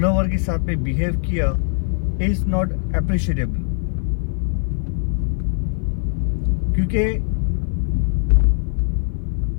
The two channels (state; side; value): silent; right; 55 dB below the other